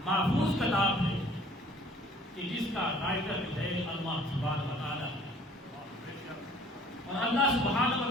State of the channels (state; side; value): normal; both; correlation 0.54